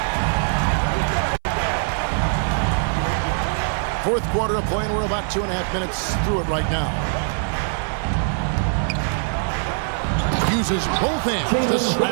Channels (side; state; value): left; silent; 64 dB below the other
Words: Fourth quarter of play, and we're about 2.5 minutes through it right now. Uses both hands to